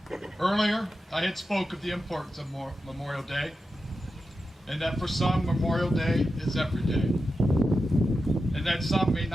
Earlier, I had spoke of the importance of Memorial Day, and that for some, Memorial Day is every day, and that some may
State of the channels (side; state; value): both; normal; correlation 0.90